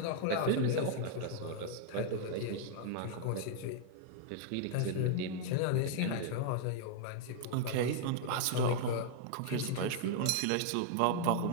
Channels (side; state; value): both; different; correlation -0.01